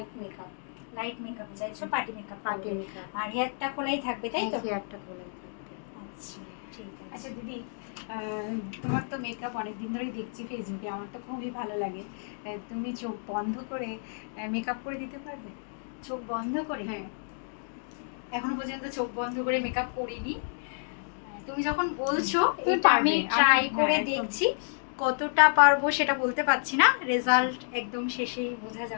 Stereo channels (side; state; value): right; silent; digital silence